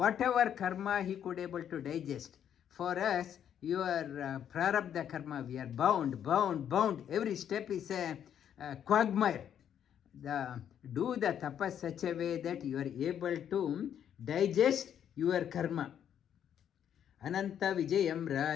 karma he could able to digest. For us, your prarabdha karma, we are bound. Every step is a quagmire. Do the tapas such a way that you are able to digest your karma. ಅನಂತ ವಿಜಯಂ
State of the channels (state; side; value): quieter; right; 9.4 dB